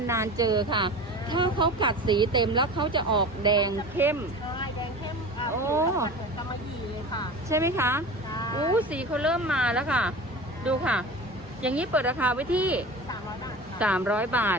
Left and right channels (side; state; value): both; normal; correlation 0.34